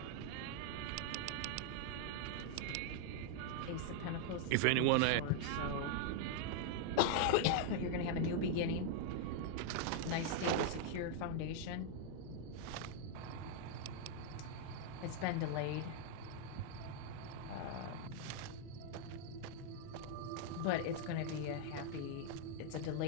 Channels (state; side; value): different; both; correlation 0.00